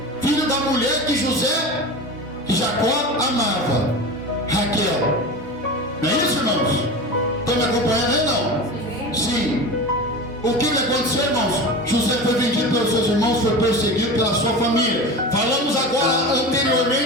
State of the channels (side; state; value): both; normal; correlation 0.29